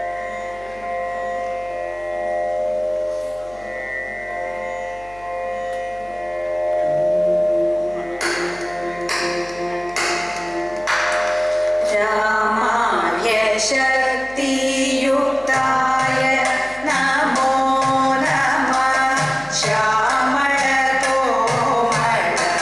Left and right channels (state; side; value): noise; left; hum, 23 dB below the sound